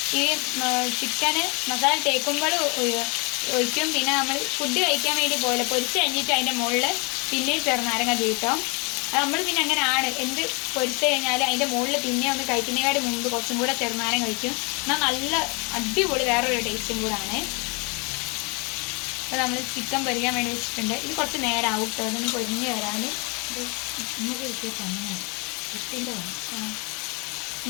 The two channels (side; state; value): right; quieter; 31.4 dB